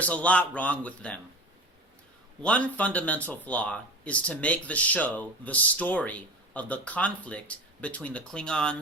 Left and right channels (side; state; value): both; normal; correlation 0.32